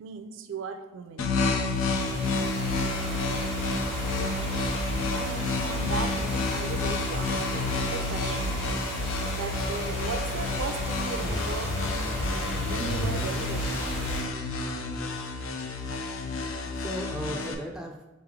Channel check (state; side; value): normal; both; correlation 0.38